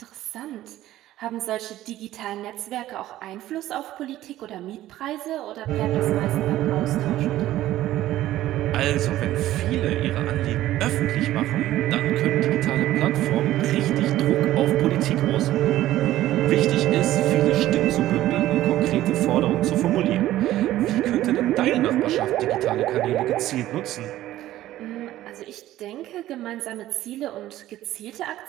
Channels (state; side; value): quieter; left; 14.4 dB